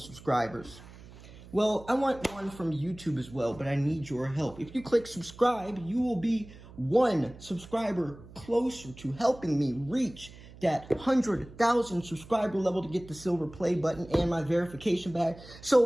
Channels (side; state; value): right; noise; hum, 19 dB below the sound